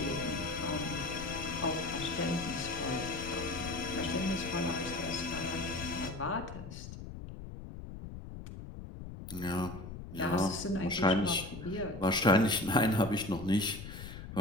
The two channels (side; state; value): left; noise; rumble, 11 dB below the sound